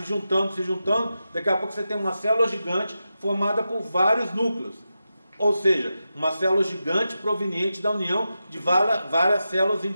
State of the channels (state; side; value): inverted; both; correlation -0.90